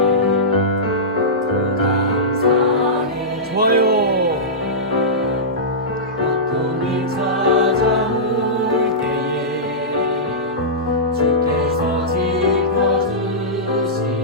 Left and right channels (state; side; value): normal; both; correlation -0.16